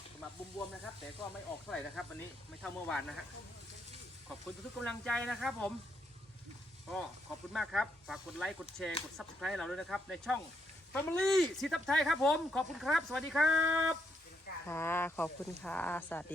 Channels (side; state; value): both; normal; correlation 0.77